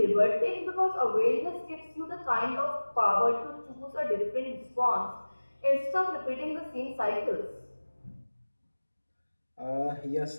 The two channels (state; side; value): inverted; both; correlation -1.00